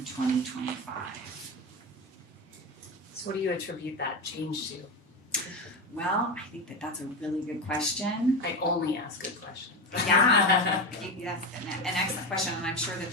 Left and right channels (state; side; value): normal; both; correlation 0.18